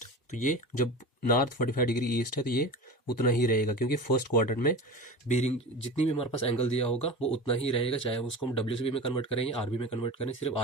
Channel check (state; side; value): normal; both; correlation 0.31